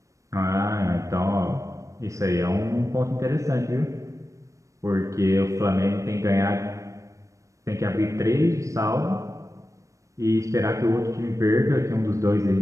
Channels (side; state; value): left; late; 0.15 ms